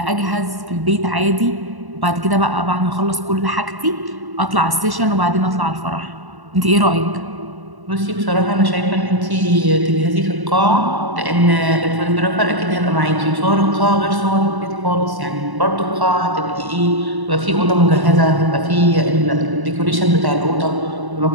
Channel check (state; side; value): late; left; 1.1 ms